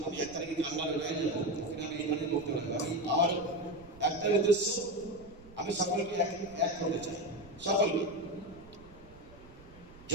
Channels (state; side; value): noise; right; rumble, 21 dB below the sound